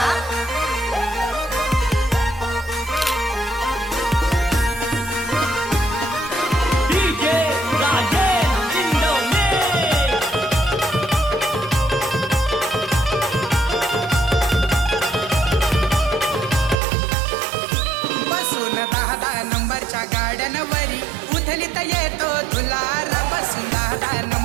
बसून 10 नंबरच्या गाड्यांवरी उधलीत येतो धुलारा. बसून 10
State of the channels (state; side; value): drops out; left; at 16.8 s